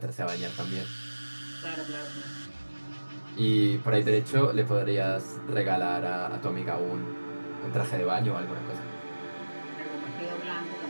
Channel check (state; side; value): inverted; both; correlation -1.00